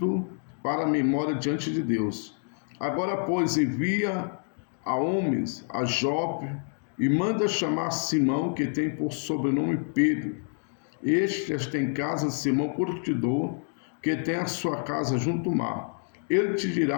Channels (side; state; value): right; silent; 58 dB below the other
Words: para a memória diante de Deus. Agora, pois, envia a homens a Jope e manda chamar Simão, que tem por sobrenome Pedro. Este tem casa de Simão Curtidor, que tem a sua casa junto ao mar. Ele te